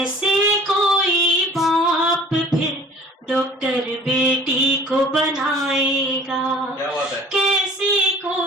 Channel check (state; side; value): normal; both; correlation 0.48